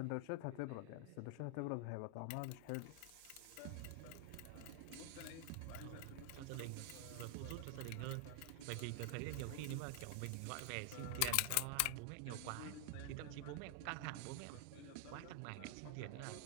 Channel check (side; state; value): both; different; correlation 0.00